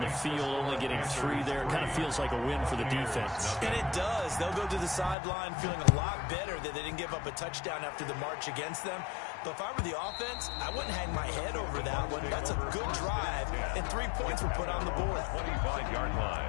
the field, only getting 3 there, it kind of feels like a win for the defense. And it does. They'll go to the sideline feeling a lot better that they didn't give up a touchdown after the march against them. But if I were the offense, I wouldn't hang my head over that one. That's a good drive, and 3 points were put on the board. 25-yard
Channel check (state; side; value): drops out; right; at 5.2 s